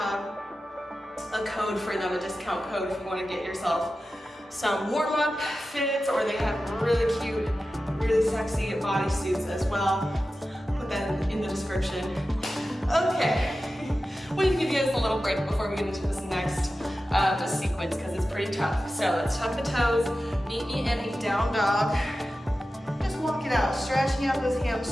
a code for them, a discount code if you want to get yourself some warm-up fits, or they have really cute, really sexy bodysuits as well. Put that in the description. Okay, we can give you guys a little break before we get into this next sequence because it's pretty tough. So let's tuck the toes, meet me in a down dog. Just walk it out, stretching out those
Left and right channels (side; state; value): both; normal; correlation 0.94